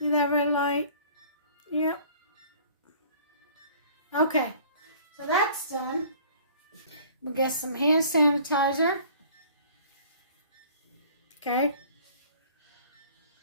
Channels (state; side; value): inverted; both; correlation -0.51